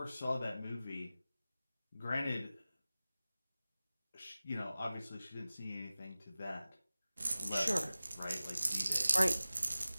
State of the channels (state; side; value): inverted; both; correlation -0.96